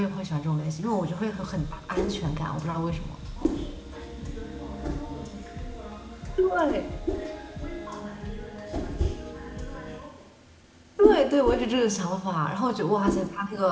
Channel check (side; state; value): both; identical; correlation 1.00